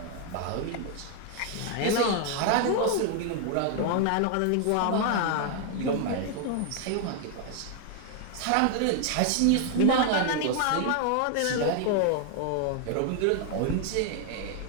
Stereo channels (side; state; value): both; different; correlation 0.00